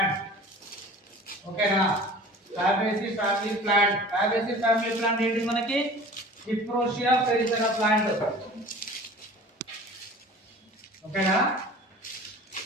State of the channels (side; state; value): both; normal; correlation 0.42